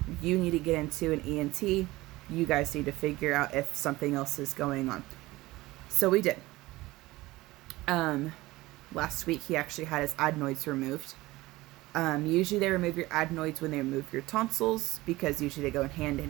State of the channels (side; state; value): left; quieter; 19.3 dB